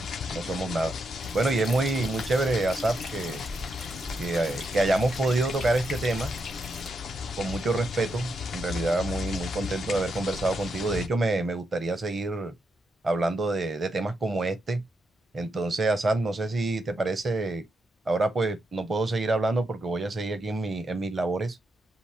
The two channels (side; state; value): both; normal; correlation 0.82